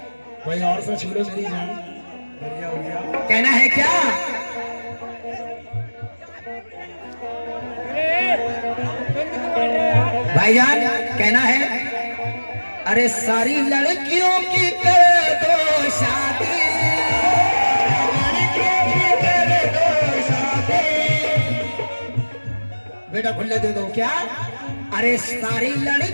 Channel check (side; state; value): both; inverted; correlation -1.00